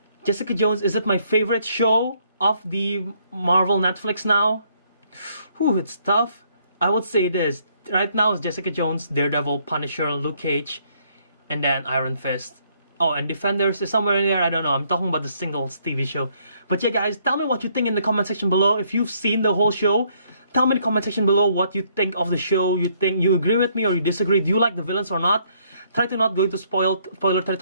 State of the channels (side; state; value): both; inverted; correlation -0.68